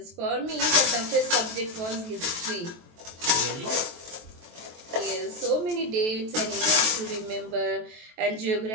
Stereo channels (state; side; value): late; left; 23 ms